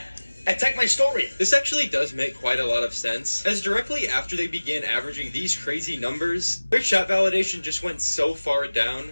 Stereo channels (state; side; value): inverted; both; correlation -1.00